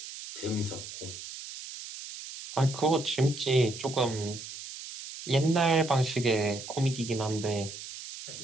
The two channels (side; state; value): right; noise; hiss, 11 dB below the sound